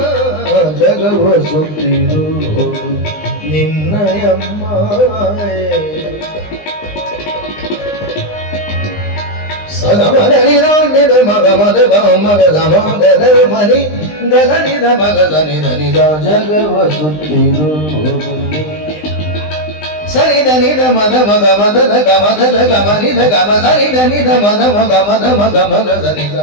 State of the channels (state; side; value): late; right; 20 ms